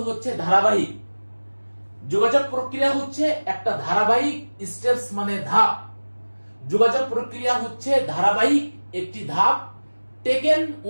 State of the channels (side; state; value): both; inverted; correlation -1.00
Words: হচ্ছে ধারাবাহিক। যোগাযোগ প্রক্রিয়া হচ্ছে একটা ধারাবাহিক, স্টেপস মানে ধাপ। যোগাযোগ প্রক্রিয়া হচ্ছে ধারাবাহিক একটি ধাপ, টেকেন